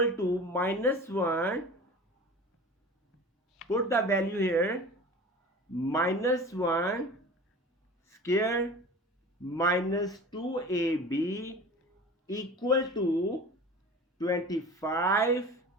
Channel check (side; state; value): both; normal; correlation 0.37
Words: to minus 1. Put the value here, minus 1 square minus 2ab equal to 25.